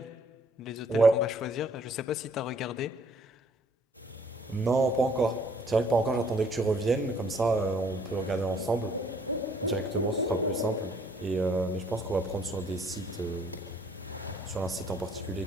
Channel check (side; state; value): both; normal; correlation 0.62